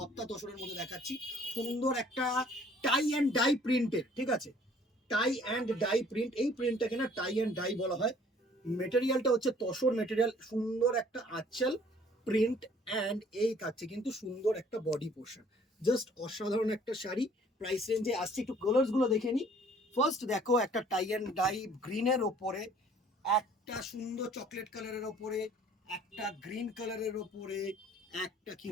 তোষণের মধ্যে দেখাচ্ছি, সুন্দর একটা টাই অ্যান্ড ডাই প্রিন্টের, ঠিক আছে, টাই অ্যান্ড ডাই প্রিন্ট। এই প্রিন্টটাকে না টাই অ্যান্ড ডাই বলা হয়। মেটেরিয়ালটা হচ্ছে তসর মেটেরিয়াল, সুন্দর একটা আঁচল প্রিন্ট অ্যান্ড এই থাকছে কিন্তু সুন্দর একটা বডি পোর্শন। জাস্ট অসাধারণ একটা শাড়ি। প্রাইস রেঞ্জে আসছে, একটু কালার্স গুলো দেখে নি। ফার্স্ট দেখো একটা টাই অ্যান্ড ডাই গ্রিনের ওপরে, একটা সুন্দর চকলেট কালারের ওপরে, একটা গ্রিন কালারের ওপরে, একটা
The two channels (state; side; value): normal; both; correlation 0.56